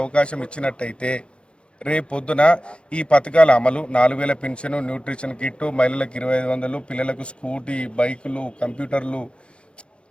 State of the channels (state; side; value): late; right; 0.057 ms